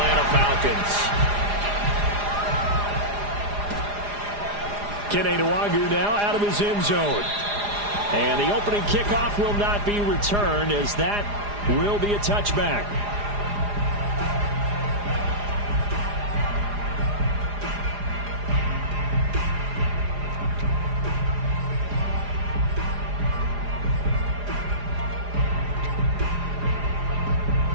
Falcons. Kene Nwangwu now out of his end zone. And the opening kickoff will not be returned, as that will be a touchback.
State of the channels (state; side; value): late; left; 4.9 ms